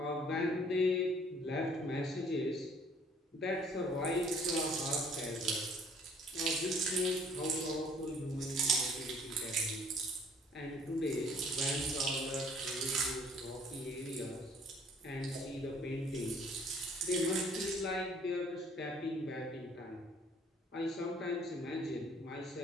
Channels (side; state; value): both; normal; correlation 0.58